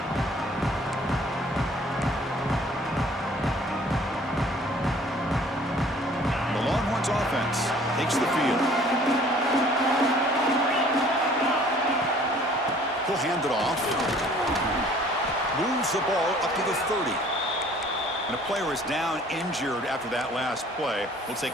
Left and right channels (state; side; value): normal; both; correlation 0.54